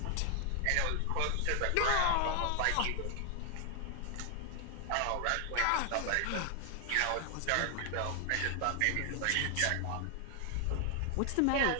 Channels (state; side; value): different; both; correlation 0.00